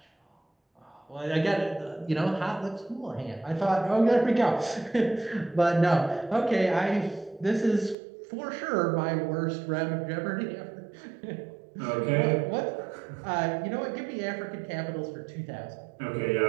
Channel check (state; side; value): drops out; left; at 8.0 s